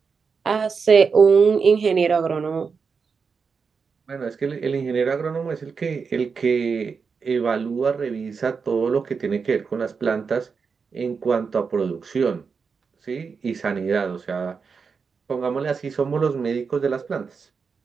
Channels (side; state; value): left; quieter; 5.5 dB